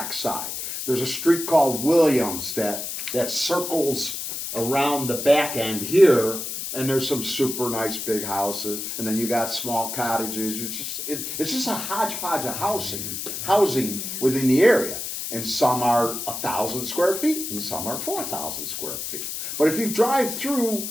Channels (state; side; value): noise; left; hiss, 5 dB below the sound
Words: side. There's a street called Williams that circles around the back end here, and there's some super nice big houses, and then you got small cottages. It's just a hodgepodge of housing within the area. And some are 1,000 square feet, and some are 4,000 square feet. But if you drive through